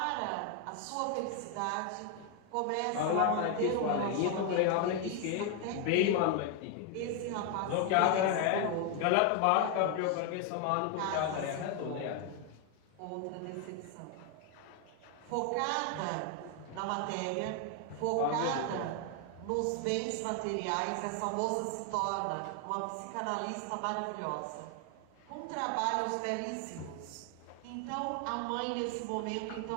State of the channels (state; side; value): different; both; correlation 0.01